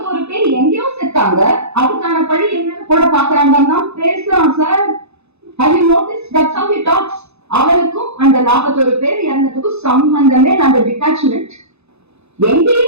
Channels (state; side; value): late; left; 0.80 ms